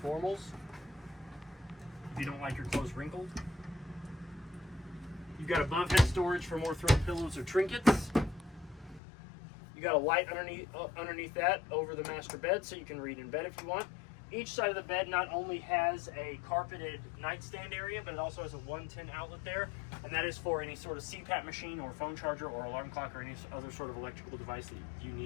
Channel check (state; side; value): drops out; right; at 9.0 s